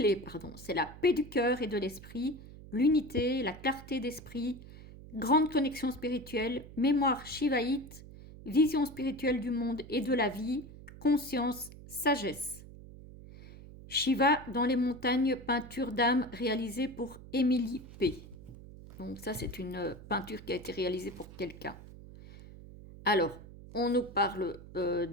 c'est la paix du cœur et de l'esprit, l'unité, la clarté d'esprit, grande connexion spirituelle, mémoire shivaïte, vision spirituelle du monde et de la vie, conscience, sagesse. Shiva dans les montagnes, peinture d'âme réalisée pour Émilie P. Donc ça, c'est une peinture qui a été réalisée pour quelqu'un. Alors, on nous parle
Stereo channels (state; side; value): noise; right; hum, 16 dB below the sound